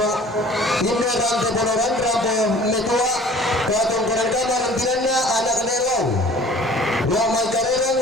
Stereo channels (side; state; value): both; normal; correlation 0.48